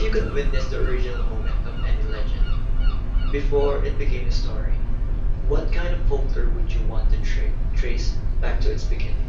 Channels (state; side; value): identical; both; correlation 1.00